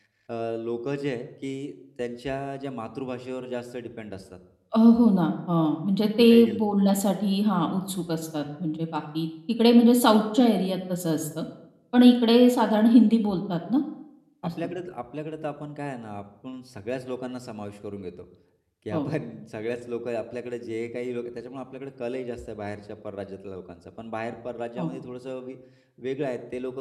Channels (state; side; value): identical; both; correlation 1.00